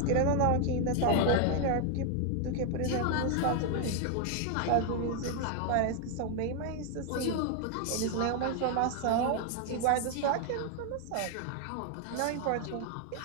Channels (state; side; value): different; both; correlation 0.00